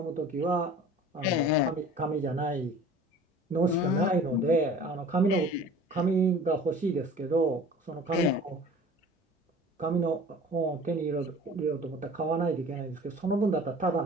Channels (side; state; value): both; normal; correlation 0.44